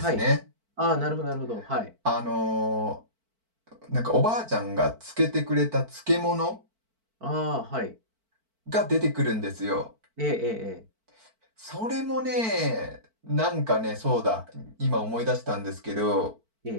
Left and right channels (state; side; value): late; left; 4.5 ms